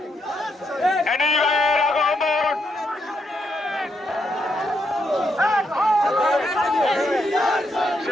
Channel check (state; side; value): normal; both; correlation 0.79